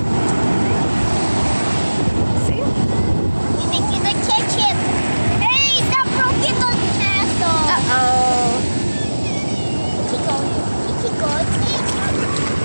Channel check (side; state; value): both; inverted; correlation -1.00